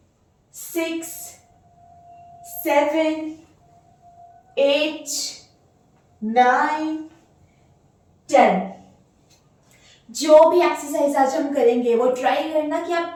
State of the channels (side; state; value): both; identical; correlation 1.00